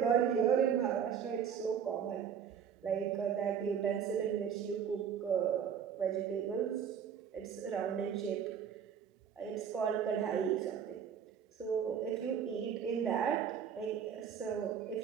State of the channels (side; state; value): left; quieter; 7.9 dB